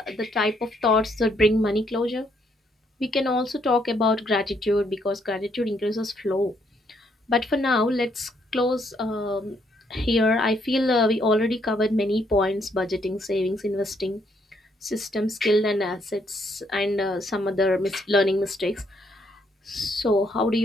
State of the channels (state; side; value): normal; both; correlation 0.72